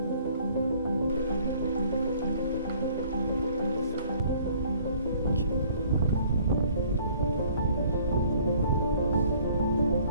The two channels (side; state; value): both; inverted; correlation -0.57